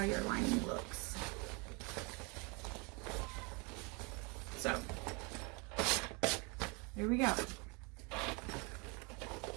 your lining looks. So, here we go.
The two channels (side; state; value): left; quieter; 30.4 dB